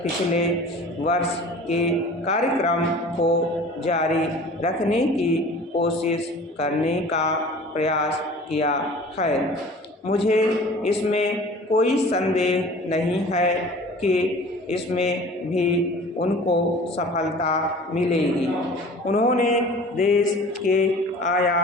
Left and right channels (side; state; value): both; normal; correlation 0.44